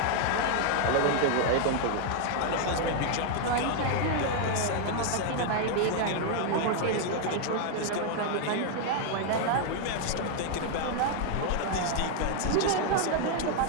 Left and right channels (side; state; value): both; different; correlation 0.00